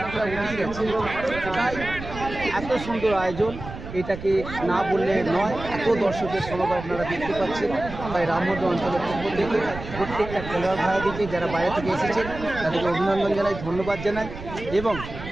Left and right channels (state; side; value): noise; right; rumble, 11 dB below the sound